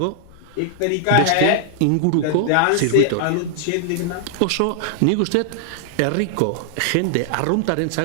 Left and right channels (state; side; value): different; both; correlation 0.00